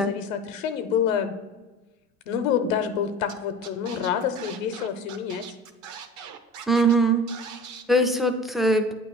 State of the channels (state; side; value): normal; both; correlation 0.37